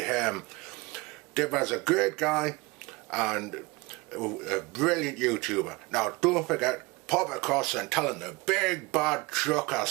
Dibber's a great guy and a brilliant YouTuber. Now don't forget, pop across and tell him the big bad trucker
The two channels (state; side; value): quieter; left; 24.3 dB